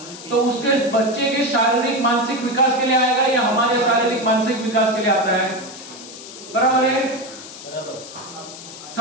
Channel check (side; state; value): left; noise; hiss, 14 dB below the sound